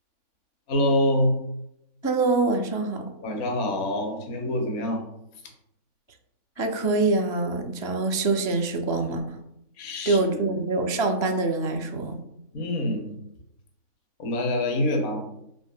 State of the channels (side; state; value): right; late; 3.5 ms